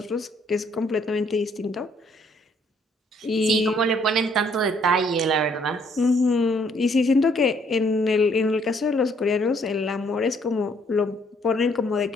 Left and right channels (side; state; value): both; normal; correlation 0.66